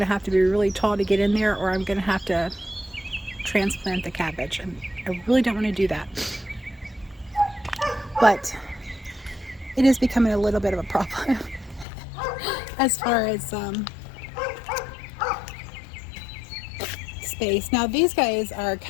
to have to be really tall to get in there, or I'm going to have to transplant the cabbage, and I really don't want to do that. But it is becoming a little bit of a problem as far as space. Now these guys are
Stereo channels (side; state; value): right; drops out; at 11.9 s